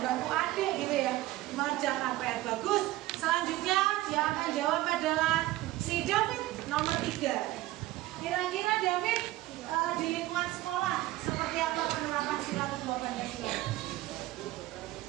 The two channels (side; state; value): left; quieter; 16.8 dB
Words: adik gitu ya, mengerjakan PR. Bagus. Selanjutnya yang akan jawab adalah si David nomor 3. Kira-kira David di lingkungan sekolah seperti apa penerapan sila kedua Pancasila?